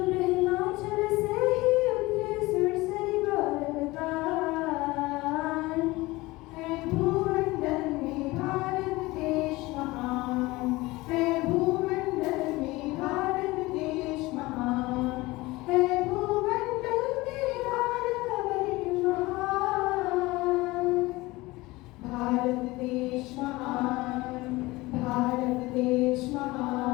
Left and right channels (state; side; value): quieter; right; 20.7 dB